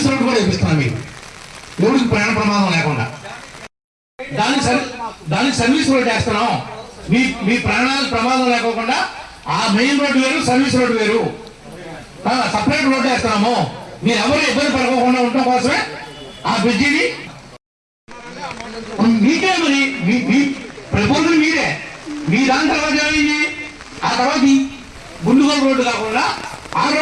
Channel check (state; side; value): identical; both; correlation 1.00